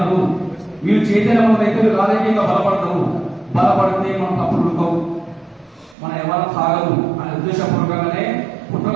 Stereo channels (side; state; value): left; drops out; at 6.0 s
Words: వీళ్ళు చైతన్యవంతులు అయితే రాజకీయంగా బలపడితే మనం తప్పుడు ఉడకవు, మన ఎవరు సాగదు అనే ఉద్దేశపూర్వకంగానే పుట్ట